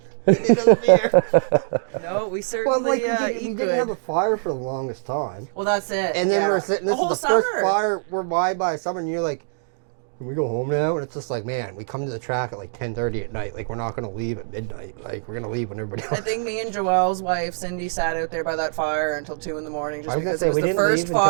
Give me another beer. No, we Well, certainly like eat we didn't good. have a fire for the longest time. Well, that's it. And then yeah. we're sitting, this The is the whole first summer. fire we're by summer, and you're like, can we go home now? And it's just like, man, we come to the track at like 10:30 at night. Like, we're not going to leave at midnight. Like, we're going to leave when everybody I else. think me and Joelle's wife, Cindy, sat out there by that fire until 2 in the morning. Just I was gonna because say, it was we the didn't first leave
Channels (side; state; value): left; silent; digital silence